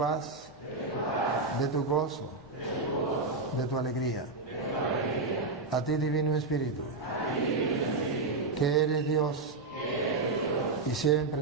de tu gozo, de tu alegría. A ti, Divino Espíritu, que eres Dios y siempre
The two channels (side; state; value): left; quieter; 3.6 dB